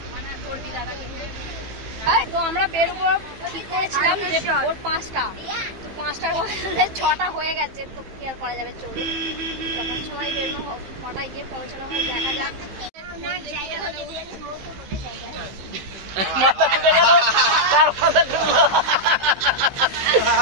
তো আমরা বেরোবো ঠিক করেছিলাম যে ভোর 5টা, তো 5টার বদলে 6টা হয়ে গেছে। তো কি আর করা যাবে, চলুন তখন সময় বেরোনো, 6টায় গিয়ে পৌঁছানো হয়, দেখা যাক। মাথা ঢুকে গেল, তার মাথা ঢুকলো,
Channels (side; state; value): left; late; 15 ms